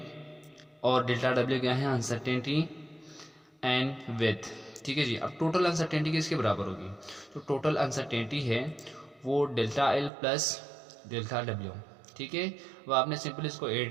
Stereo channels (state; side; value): drops out; left; at 10.1 s